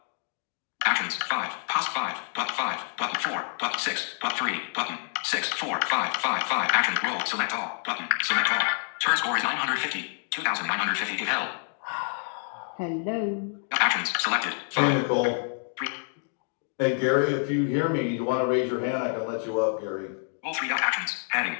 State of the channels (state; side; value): silent; right; 60 dB below the other